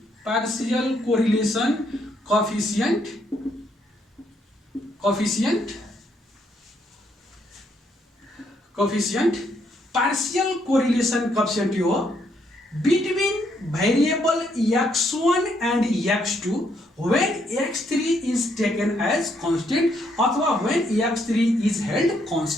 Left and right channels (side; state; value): both; normal; correlation 0.73